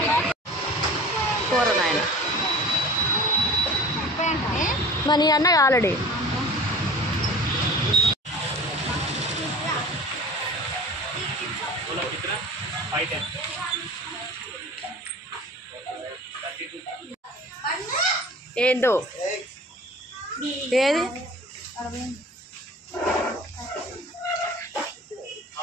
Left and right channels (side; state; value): both; normal; correlation 0.40